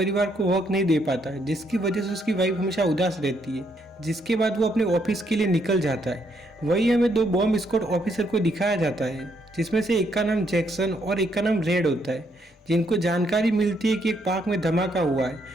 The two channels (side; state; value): both; normal; correlation 0.73